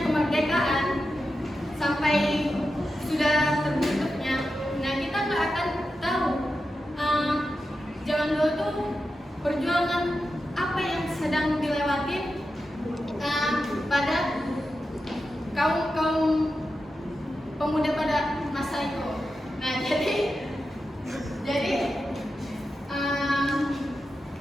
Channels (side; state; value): both; normal; correlation 0.90